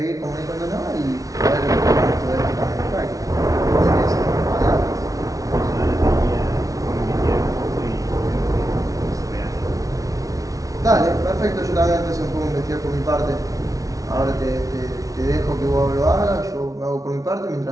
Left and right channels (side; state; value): left; late; 0.17 ms